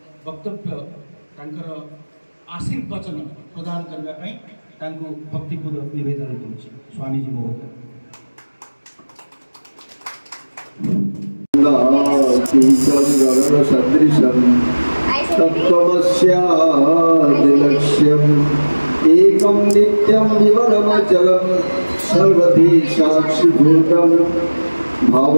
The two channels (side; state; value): both; inverted; correlation -1.00